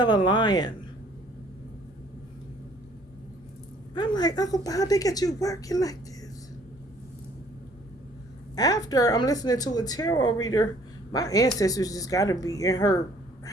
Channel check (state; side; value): normal; both; correlation 0.58